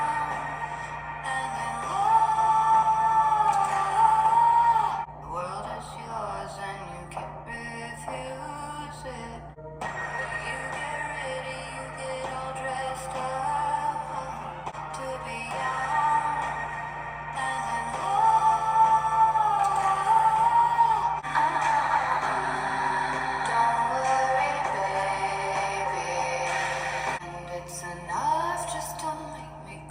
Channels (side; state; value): both; identical; correlation 1.00